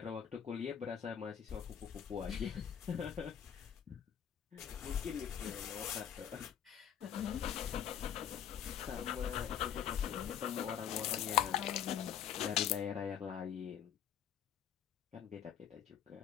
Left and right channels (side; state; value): right; quieter; 9.1 dB